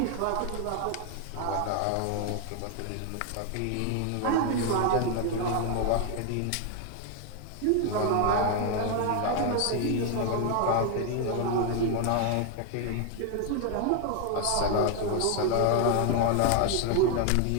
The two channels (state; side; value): different; both; correlation 0.01